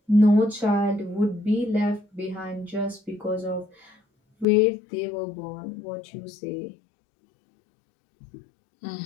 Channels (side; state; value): right; drops out; at 4.5 s